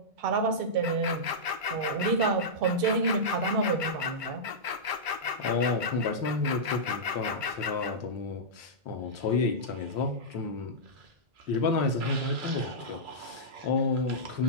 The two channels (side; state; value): left; late; 1.0 ms